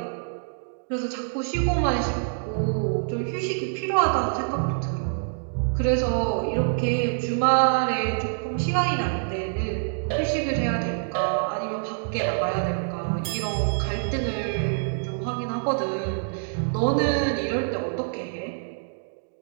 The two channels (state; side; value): silent; left; digital silence